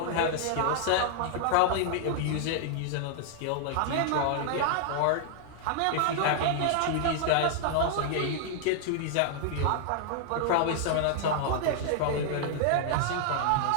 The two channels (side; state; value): both; different; correlation -0.01